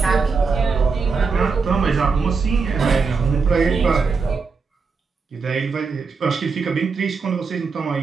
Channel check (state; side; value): quieter; left; 4.9 dB